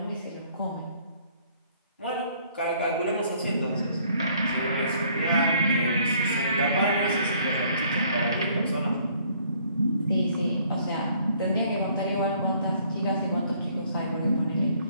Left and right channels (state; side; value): inverted; both; correlation -0.62